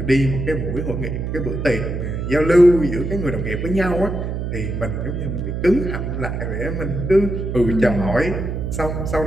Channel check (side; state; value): right; noise; hum, 3 dB below the sound